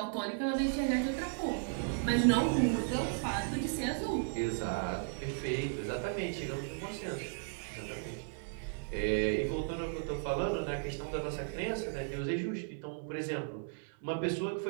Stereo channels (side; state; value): left; silent; 54 dB below the other